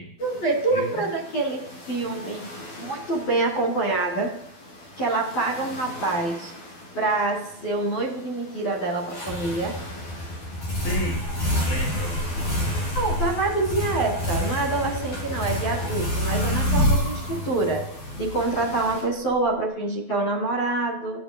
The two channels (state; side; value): late; right; 12 ms